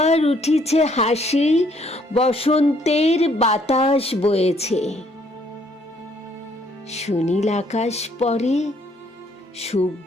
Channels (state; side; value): normal; both; correlation 0.66